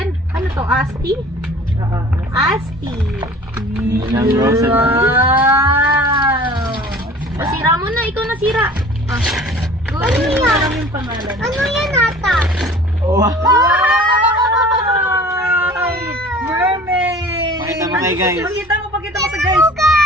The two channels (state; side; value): normal; both; correlation 0.46